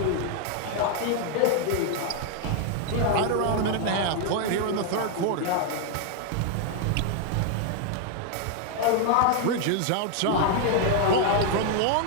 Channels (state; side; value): different; both; correlation 0.00